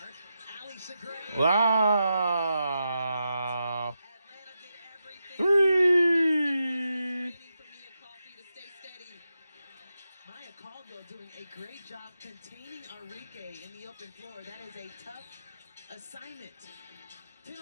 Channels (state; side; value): inverted; both; correlation -0.87